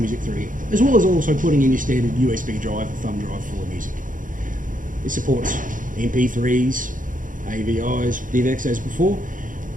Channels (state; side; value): late; left; 0.39 ms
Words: through it, as well as also putting in your standard USB drive or thumb drive full of music. It supports MP3s, AVIs, DivX as before.